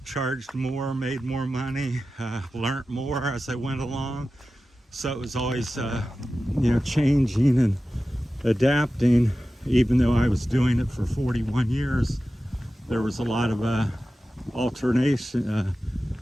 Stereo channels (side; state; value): both; normal; correlation 0.94